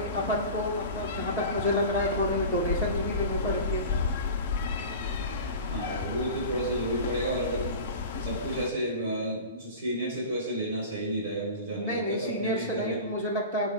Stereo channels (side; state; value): both; inverted; correlation -0.34